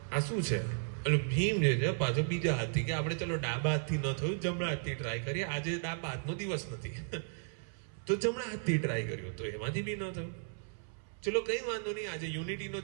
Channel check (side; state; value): left; silent; 55 dB below the other